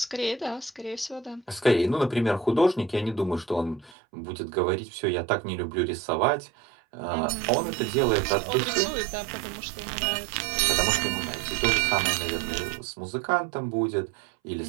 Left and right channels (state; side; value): drops out; left; at 4.0 s